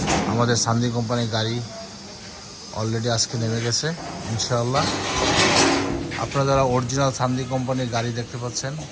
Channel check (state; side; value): identical; both; correlation 1.00